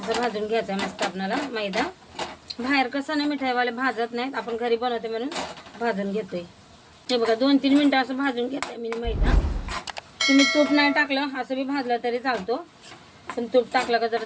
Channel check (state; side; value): identical; both; correlation 1.00